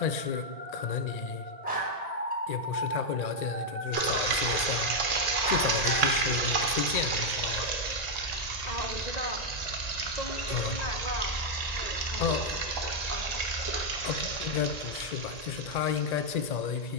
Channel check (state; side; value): late; right; 1.9 ms